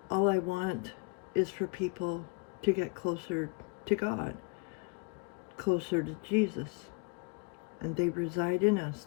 All I want is for people to get closer to God, closer to Jesus. And they reside in us,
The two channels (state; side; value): quieter; right; 30.5 dB